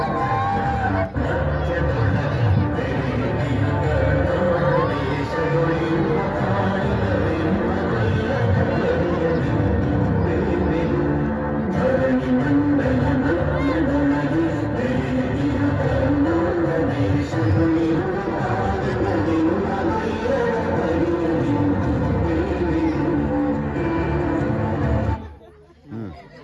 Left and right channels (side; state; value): both; identical; correlation 1.00